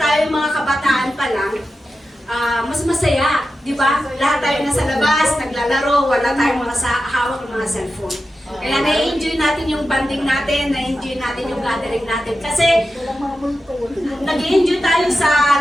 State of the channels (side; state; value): both; normal; correlation 0.91